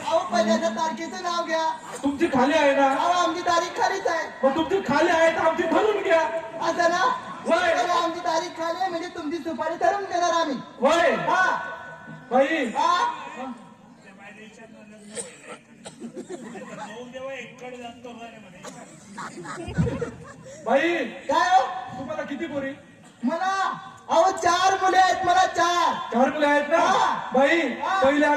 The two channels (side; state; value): both; identical; correlation 1.00